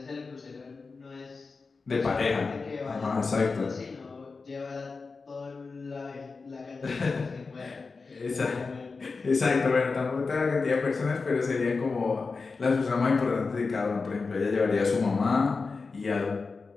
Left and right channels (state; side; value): quieter; right; 4.3 dB